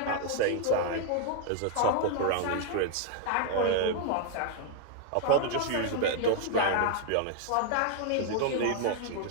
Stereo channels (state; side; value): different; both; correlation 0.00